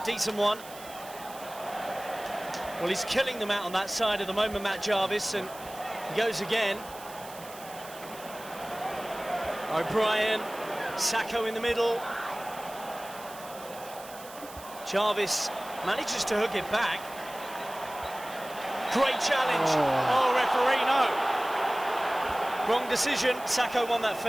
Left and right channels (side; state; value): right; noise; hiss, 17 dB below the sound